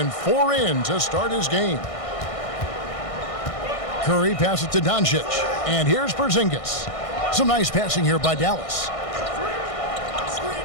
4 in to start his game. Curry passes to Doncic. And here's Porzingis. Some nice passing here by Dallas.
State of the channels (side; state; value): right; late; 1.6 ms